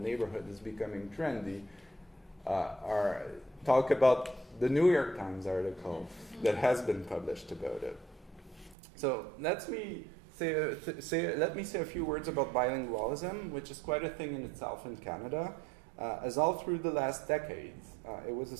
is becoming trendy talk about the New York Times article that has been published about it. So let me say a few words about bilingualism, which is quite a thing in itself in Canada. As all through the last decades, it was a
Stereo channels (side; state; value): left; drops out; at 8.8 s